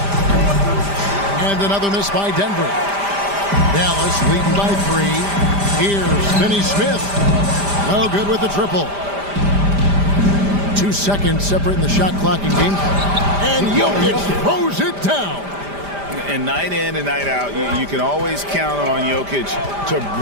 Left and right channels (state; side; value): late; left; 5.0 ms